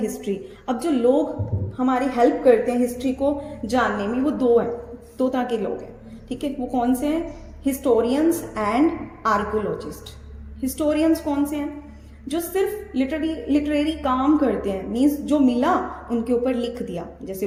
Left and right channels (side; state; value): both; identical; correlation 1.00